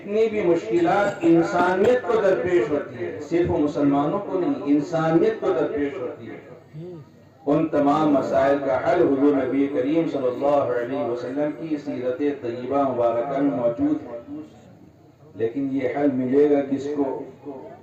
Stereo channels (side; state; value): both; identical; correlation 1.00